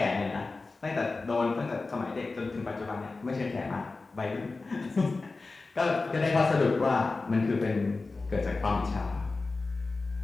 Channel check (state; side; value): quieter; right; 3.7 dB